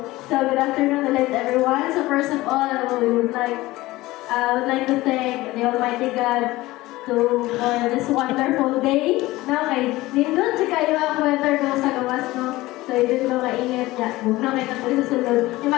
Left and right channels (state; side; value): quieter; right; 18.6 dB